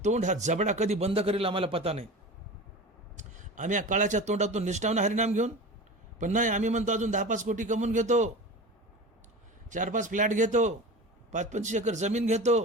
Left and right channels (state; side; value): normal; both; correlation 0.32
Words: तोंड, हा जबडा कधी बंद करेल आम्हाला पता नाही. आम्ही या काळाच्या तोंडातून निष्ठावून हरिनाम घेऊन, पण नाही. आम्ही म्हणतो अजून 10-5 कोटी कमवून घेतो, 4-5 फ्लॅट घेतो, 5-25 एकर जमीन